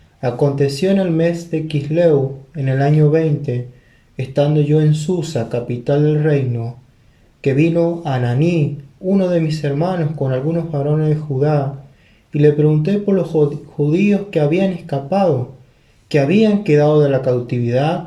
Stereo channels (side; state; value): both; identical; correlation 1.00